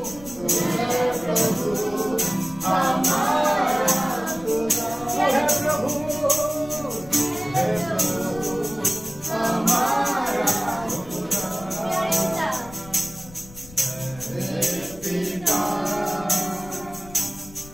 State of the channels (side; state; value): left; noise; rumble, 18 dB below the sound